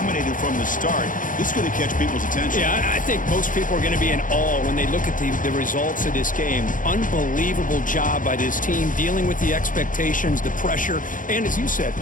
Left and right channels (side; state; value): right; late; 0.38 ms